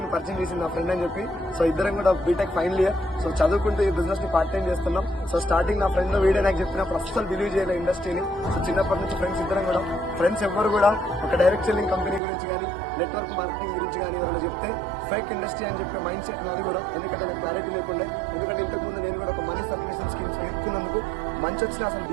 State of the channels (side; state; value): left; drops out; at 12.2 s